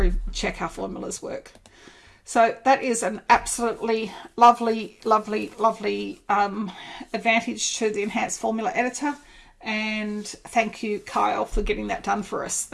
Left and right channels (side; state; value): both; identical; correlation 1.00